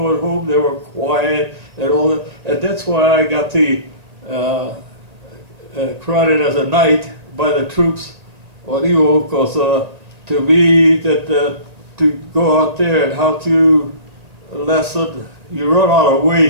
home they were quiet and all that, and that's why I got the crowded as a knight by the troops on Iwo, because to me that to go out there and how to lesson, you run out of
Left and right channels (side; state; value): left; late; 1.9 ms